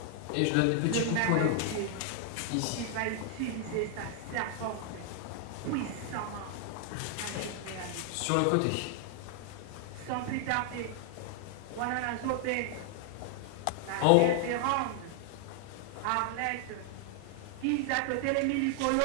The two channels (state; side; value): different; both; correlation 0.00